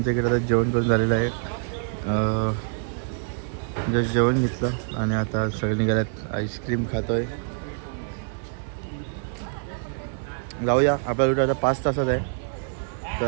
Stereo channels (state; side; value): silent; left; 58 dB below the other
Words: इकडे आता जेवण करून झालेलं आहे. जस्ट जेवण घेतलं आणि आता सगळे निघाल्यात. आईस्क्रीम खातोय. जाऊया. आपला रूट आता 5 तासात आहे.